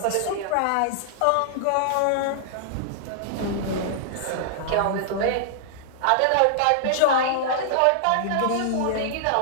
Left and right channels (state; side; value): different; both; correlation -0.01